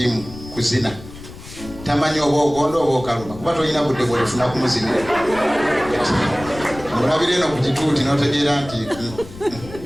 kuzina tamanyi oba ogonda oba okaluma kuba tolina budde bwolifuna kumuzinira olabira eno ku kituuti n'otegeera nti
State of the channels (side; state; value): left; noise; rumble, 16 dB below the sound